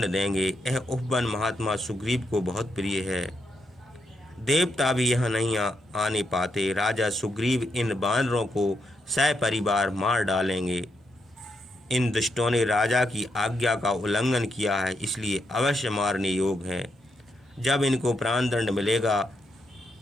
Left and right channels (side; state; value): both; normal; correlation 0.80